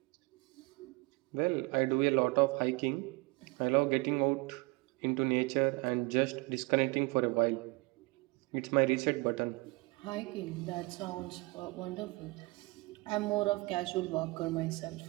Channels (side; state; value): left; quieter; 25.3 dB